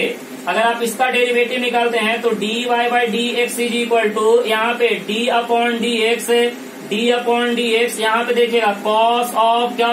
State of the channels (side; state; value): both; identical; correlation 1.00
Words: अगर आप इसका डेरिवेटिव निकालते हैं तो D Y by D x is equal to यहाँ पे d upon d x, d upon d x, यहाँ पे देखिएगा कॉस ऑफ क्या